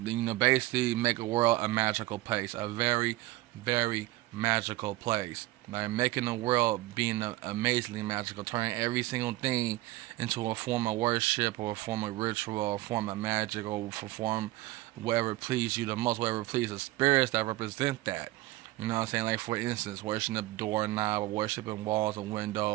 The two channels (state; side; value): quieter; left; 18.0 dB